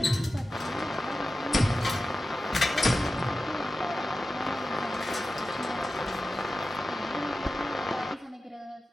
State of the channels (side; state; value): both; normal; correlation 0.94